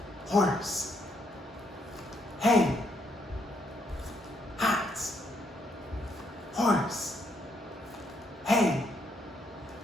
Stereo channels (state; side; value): normal; both; correlation 0.74